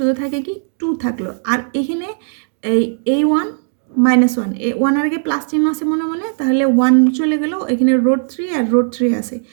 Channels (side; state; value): left; silent; digital silence